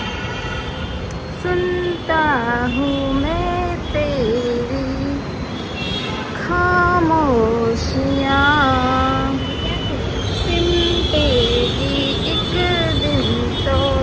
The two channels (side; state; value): both; identical; correlation 1.00